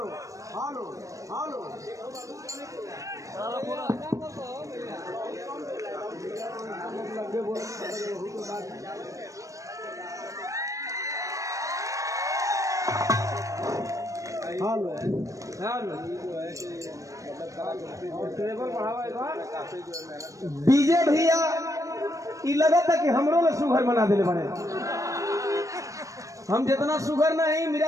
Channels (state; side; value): late; left; 0.16 ms